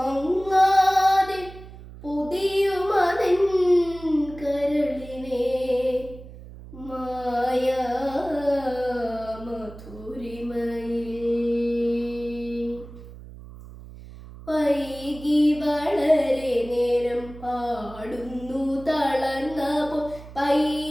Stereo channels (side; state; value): right; noise; hum, 16 dB below the sound